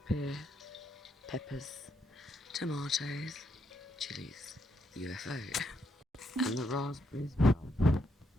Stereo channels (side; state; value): both; normal; correlation 0.78